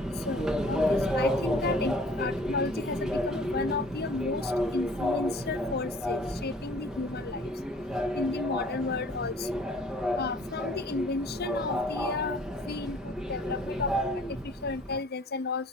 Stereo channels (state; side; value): normal; both; correlation 0.52